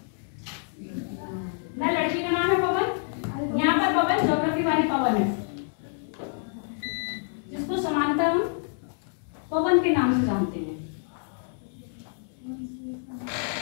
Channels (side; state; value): right; silent; 60 dB below the other